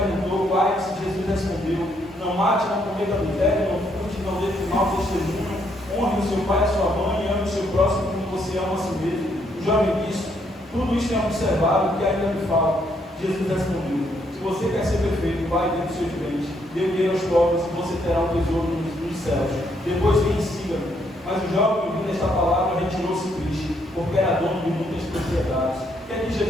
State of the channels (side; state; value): both; normal; correlation 0.73